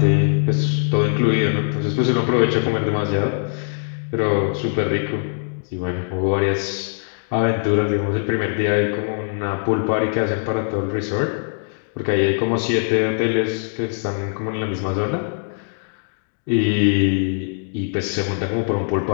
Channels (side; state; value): right; silent; digital silence